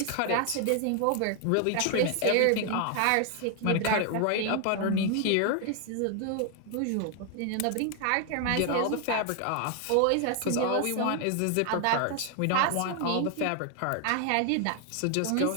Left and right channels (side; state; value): both; different; correlation 0.00